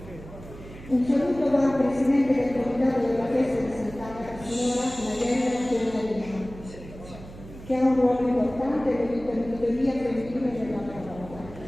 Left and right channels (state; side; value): noise; right; hum, 16 dB below the sound